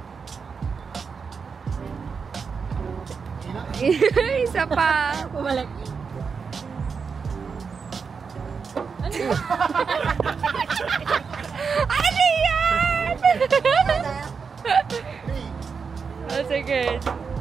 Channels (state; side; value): quieter; left; 5.6 dB